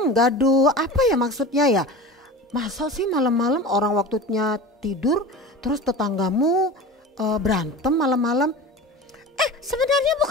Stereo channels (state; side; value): normal; both; correlation 0.33